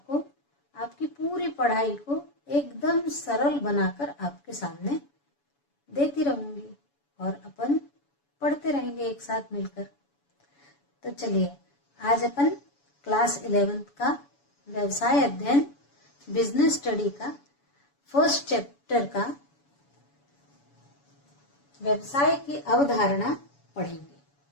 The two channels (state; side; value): late; right; 7.1 ms